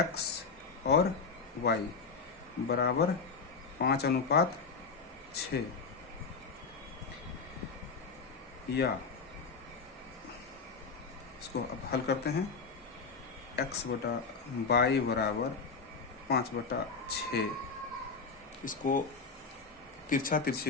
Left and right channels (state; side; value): quieter; right; 4.8 dB